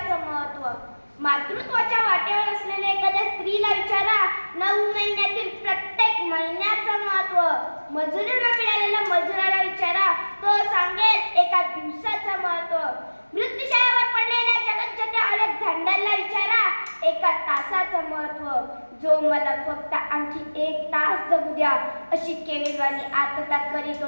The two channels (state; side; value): inverted; both; correlation -1.00